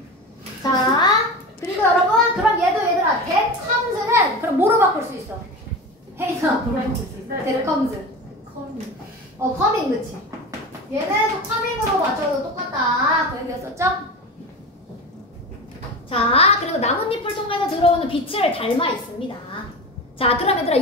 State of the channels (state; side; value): normal; both; correlation 0.28